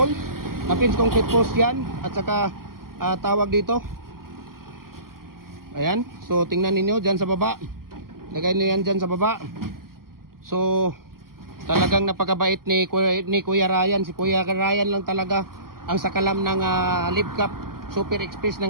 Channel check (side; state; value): left; late; 0.92 ms